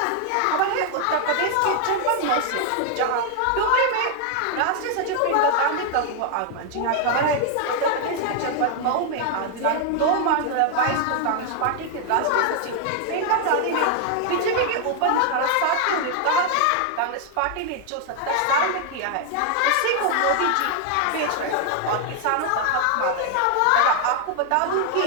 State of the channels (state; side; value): different; both; correlation 0.00